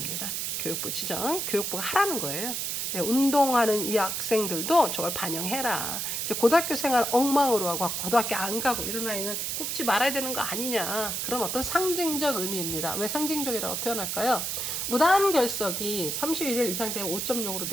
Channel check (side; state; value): right; noise; hiss, 2 dB below the sound